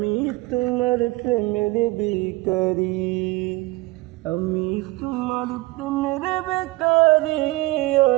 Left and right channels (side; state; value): left; quieter; 21.0 dB